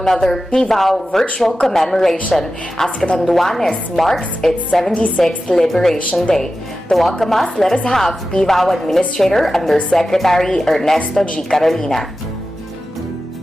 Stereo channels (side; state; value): both; normal; correlation 0.93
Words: PVAO virtual commemoration as Catanduanes marks its 76th Liberation Day. To welcome us, let us have PVAO Administrator Undersecretary Ernesto G. Carolina.